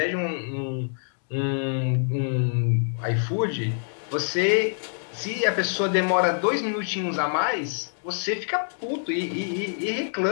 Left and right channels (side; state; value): right; silent; digital silence